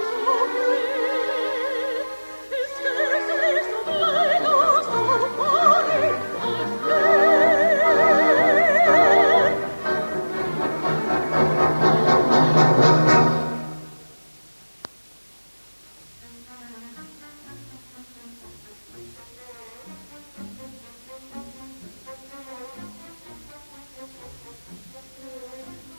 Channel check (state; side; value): inverted; both; correlation -1.00